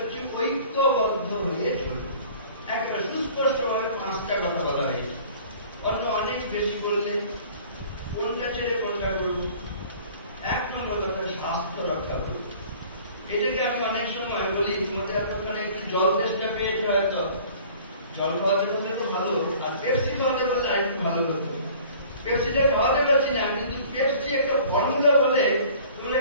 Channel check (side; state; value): both; inverted; correlation -0.49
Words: ঐক্যবদ্ধ হয়ে চলবে। একটা সুস্পষ্টভাবে 5টা কথা বলা হয়েছে। অন্য অনেক বেশি বললে কোনটা ছেড়ে কোনটা করব? 1 নম্বর কথা, স্বাস্থ্য রক্ষা করব। এটাকে আমি অনেক সময় বলি, তোমাদের আপনারা একটু জল তেষ্টা পেয়েছে, হয়তো জল খাওয়াতে পারলে তো ভালো, আর পেপসি খাওয়াতে পারলে আর একটু ভালো হতো। পেপসিটা খাওয়াতে পারছি না, কিন্তু পেপসি একটা ফর্মুলা বলে তোমরা